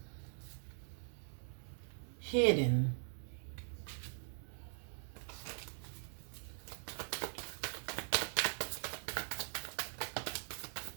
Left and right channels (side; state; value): left; silent; digital silence